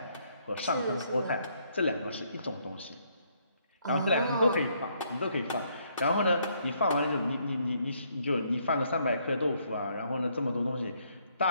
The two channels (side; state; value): both; inverted; correlation -0.71